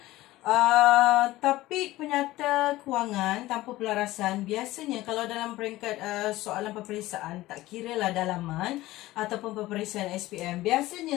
Topik penyata kewangan tanpa pelarasan biasanya kalau dalam peringkat soalan peperiksaan, tak kira lah dalaman ataupun peperiksaan SPM, biasanya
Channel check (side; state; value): right; quieter; 17.2 dB